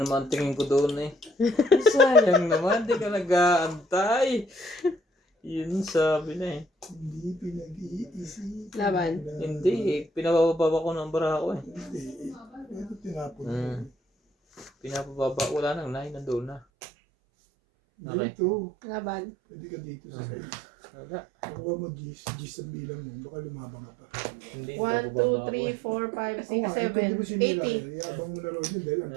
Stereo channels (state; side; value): drops out; left; at 16.6 s